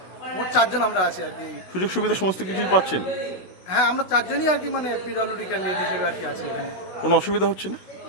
মোট 4 জন আমরা আছি আর কি। সুযোগ সুবিধা সমস্ত কিছুই পাচ্ছেন? হ্যাঁ, আমরা 4 জনই আর কি পিডব্লিউডি ক্যান্ডিডেট হিসেবে আর কি আছি এখানে। কোনো অসুবিধা হচ্ছে না?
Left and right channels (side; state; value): right; late; 16 ms